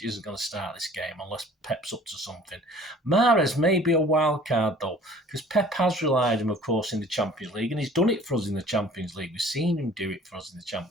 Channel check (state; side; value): normal; both; correlation 0.50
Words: isn't going to start this game unless Pep's up to something. Mahrez may be a wild card though, because Pep has relied on him, of course, in the Champions League, and he's done it for us in the Champions League. We've seen him do it for us in the